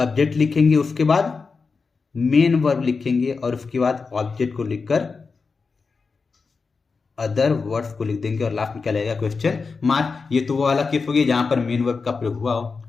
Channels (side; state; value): right; quieter; 4.7 dB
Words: लिखेंगे, उसके बाद मेन वर्ब लिखेंगे और उसके बाद ऑब्जेक्ट को लिखकर अदर वर्ड्स को लिख देंगे और लास्ट में क्या लगेगा, क्वेश्चन मार्क। ये तो वो वाला केस हो गया जहां पर मेन वर्ब का प्रयोग हुआ हो,